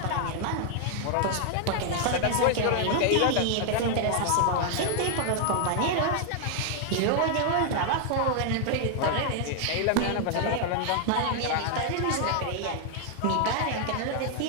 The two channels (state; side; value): different; both; correlation 0.00